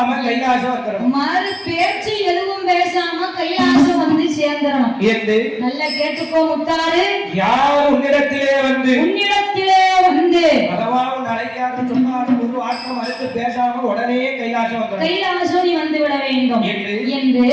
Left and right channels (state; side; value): identical; both; correlation 1.00